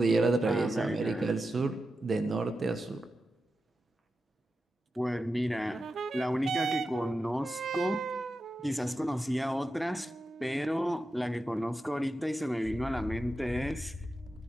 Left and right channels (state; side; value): normal; both; correlation 0.90